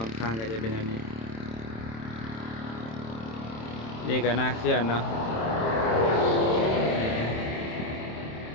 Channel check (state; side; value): late; right; 27 ms